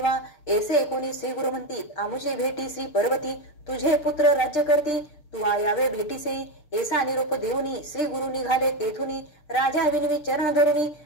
ऐसे कोणी श्री गुरु म्हणती आमुषे भेटी श्री पर्वती. तुझे पुत्र राज्य करती तू यावे भेटीसे. ऐसा निरोप देऊनी श्री गुरु निघाले तेथुनी. राजा विनवी चरण धरुनी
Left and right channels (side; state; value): right; late; 6.6 ms